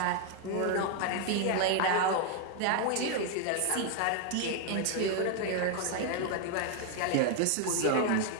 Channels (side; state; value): both; different; correlation 0.01